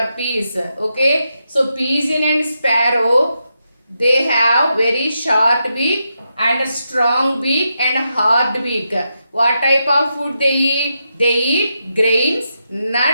peace. Okay, so pigeon and sparrow, They have very short beak and strong beak and hard beak. What type of food they eat? They eat grains,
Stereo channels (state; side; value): inverted; both; correlation -0.85